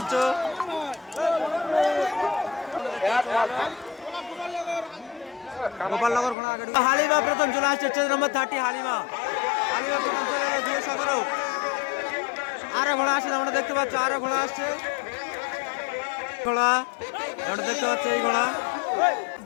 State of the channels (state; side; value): drops out; right; at 6.4 s